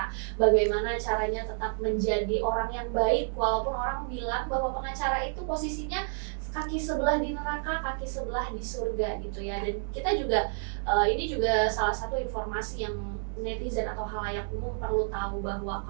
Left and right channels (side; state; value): left; silent; digital silence